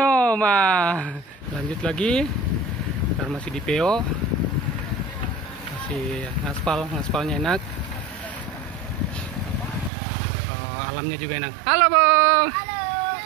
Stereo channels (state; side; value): drops out; left; at 9.9 s